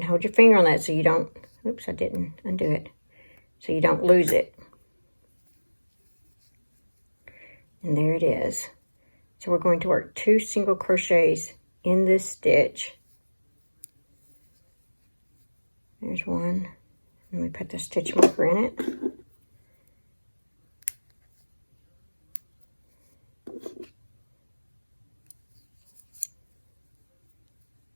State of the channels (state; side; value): inverted; both; correlation -1.00